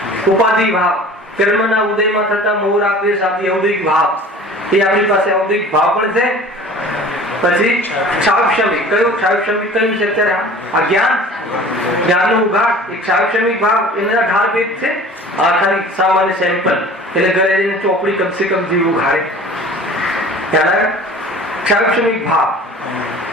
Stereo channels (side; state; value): both; normal; correlation 0.44